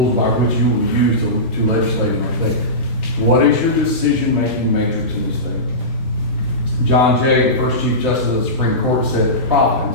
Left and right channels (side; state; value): both; normal; correlation -0.20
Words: by which you will use to legislate in our state? What is your decision-making matrix in the state? John Jay, the first Chief Justice of the Supreme Court, said